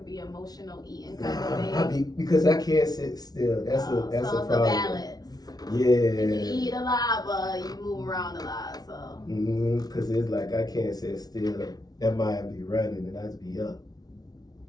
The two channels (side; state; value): right; late; 0.19 ms